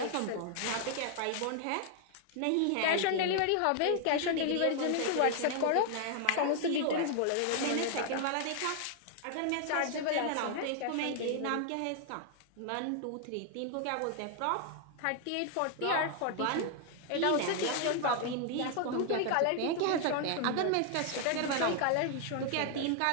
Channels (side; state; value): both; different; correlation 0.00